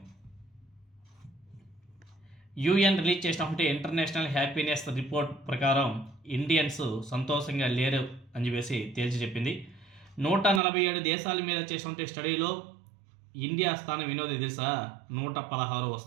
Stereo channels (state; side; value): drops out; left; at 10.6 s